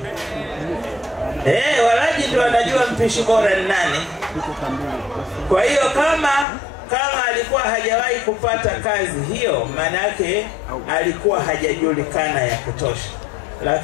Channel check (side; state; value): right; drops out; at 6.5 s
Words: Walaji ndio wanajua mpishi bora ni nani. Kwa hiyo kama alikuwa hajawahi kupata kazi hiyo, manake alikuwa hajajulikana ya kutosha.